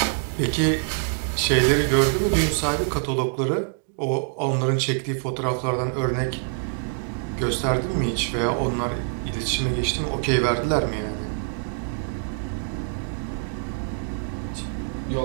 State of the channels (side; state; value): left; silent; digital silence